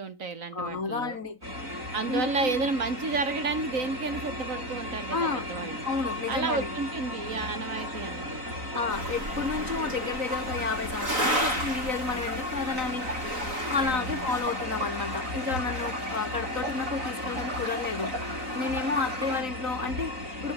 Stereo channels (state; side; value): late; left; 3.9 ms